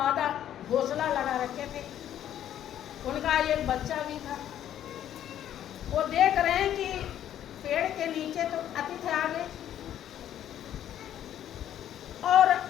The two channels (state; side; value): quieter; right; 10.9 dB